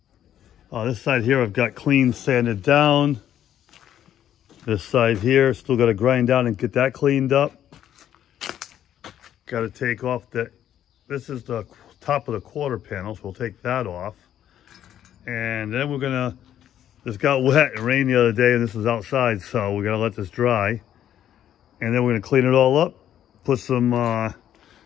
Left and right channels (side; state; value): right; quieter; 10.8 dB